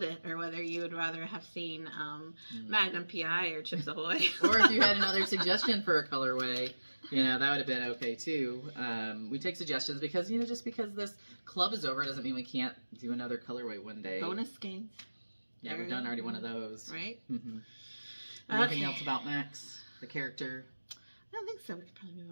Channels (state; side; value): inverted; both; correlation -1.00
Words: it, or whether you would rather have seen Magnum PI or Chips Ahoy, or if you had another suggestion for a colorway. That would have been okay too. We take suggestions because, just because this club is over doesn't mean we can't do another colorway one day. Bonus games. Yeah, we've done already one of those. Right? Mm-hmm. Anything else about Max, the character? I don't think so. We could probably move